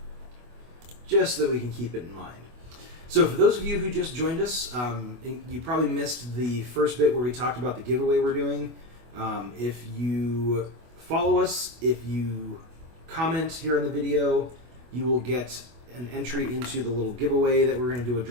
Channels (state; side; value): late; left; 24 ms